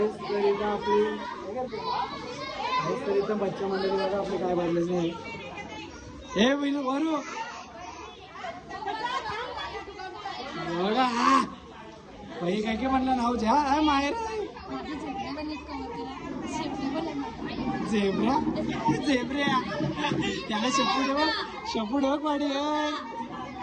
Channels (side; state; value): both; identical; correlation 1.00